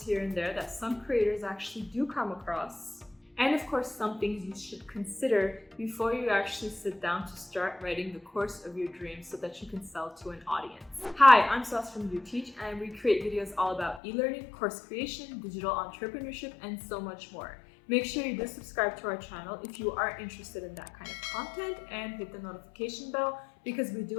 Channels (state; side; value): drops out; right; at 14.0 s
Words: here and there that some creators actually do come across. And of course, some things you should consider before you actually sit down to start writing the course of your dreams so that you can sell to an audience. Hi, I'm Sas from Uteach, and we create videos all about e-learning, course creation, digital entrepreneurship, and so much more. Make sure you do subscribe to our channel if you are interested in that kind of content, and hit the notification bell because we do